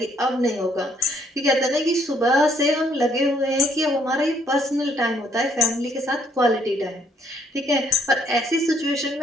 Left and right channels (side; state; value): both; normal; correlation 0.67